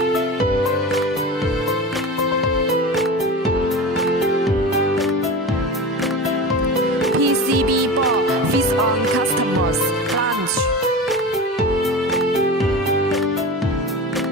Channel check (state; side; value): normal; both; correlation 0.30